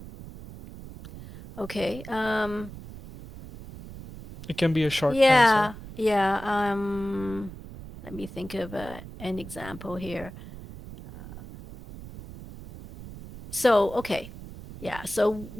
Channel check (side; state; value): right; noise; rumble, 14 dB below the sound